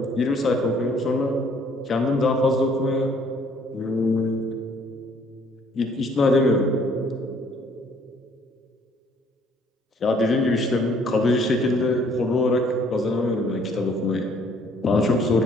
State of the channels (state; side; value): normal; both; correlation 0.61